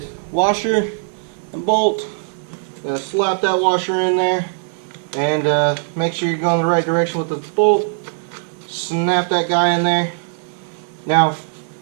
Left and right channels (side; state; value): left; silent; 61 dB below the other